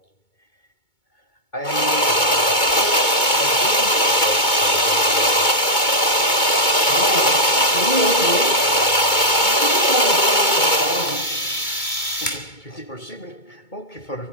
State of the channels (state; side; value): late; right; 2.2 ms